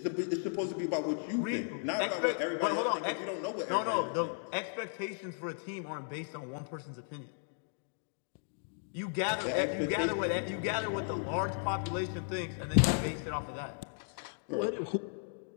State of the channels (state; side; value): silent; right; digital silence